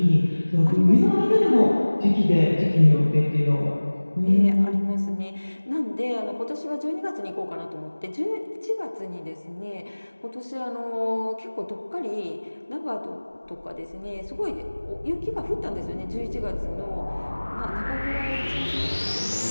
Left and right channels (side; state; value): both; inverted; correlation -1.00